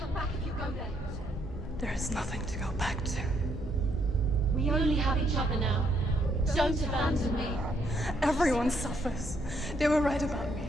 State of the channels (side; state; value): both; normal; correlation 0.72